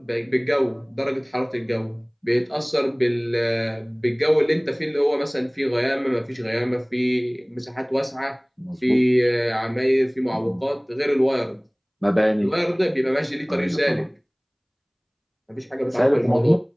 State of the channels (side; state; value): both; identical; correlation 1.00